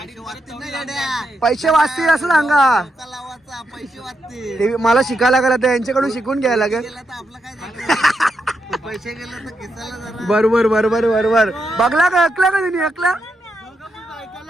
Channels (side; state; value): both; normal; correlation 0.83